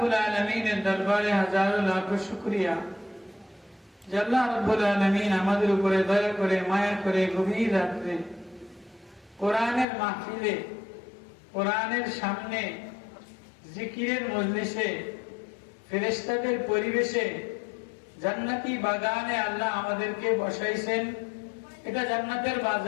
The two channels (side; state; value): right; drops out; at 9.9 s